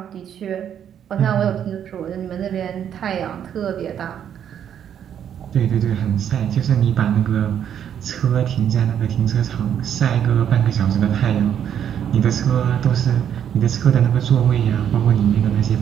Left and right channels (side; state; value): left; quieter; 9.2 dB